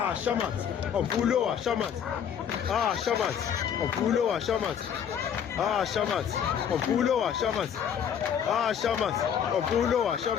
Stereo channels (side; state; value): right; quieter; 8.3 dB